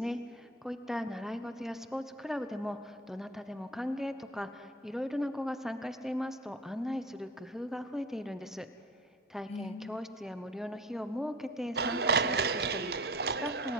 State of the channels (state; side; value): normal; both; correlation 0.38